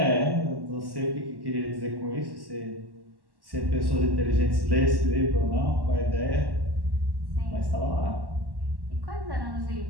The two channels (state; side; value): late; left; 1.1 ms